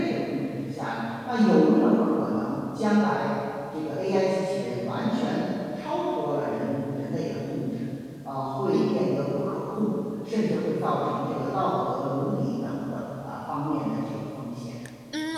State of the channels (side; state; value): both; identical; correlation 1.00